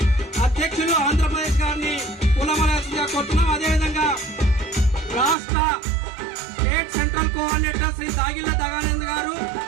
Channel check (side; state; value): left; drops out; at 5.4 s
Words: అధ్యక్షులు ఆంధ్రప్రదేశ్ గారిని పూలమాలగా కొడుతున్నాం. అదేవిధంగా రాష్ట్ర స్టేట్ సెంట్రల్ కోఆర్డినేటర్ శ్రీ దాగిల్ల దగానంద్ గారు,